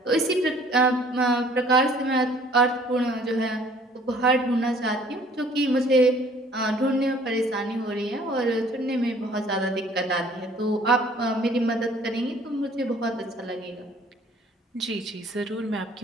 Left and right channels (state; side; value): normal; both; correlation 0.55